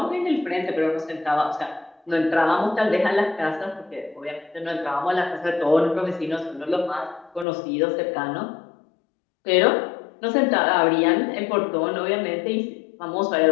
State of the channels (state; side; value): drops out; right; at 7.5 s